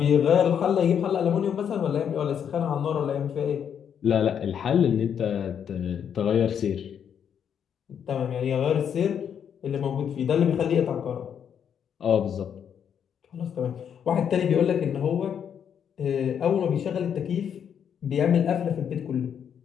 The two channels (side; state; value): right; quieter; 8.2 dB